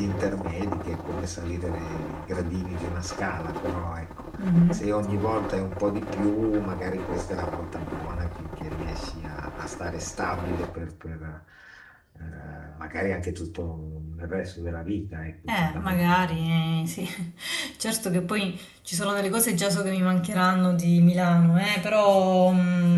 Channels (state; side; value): identical; both; correlation 1.00